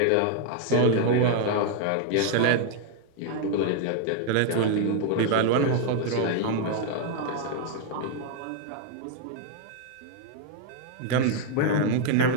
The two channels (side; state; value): both; different; correlation 0.00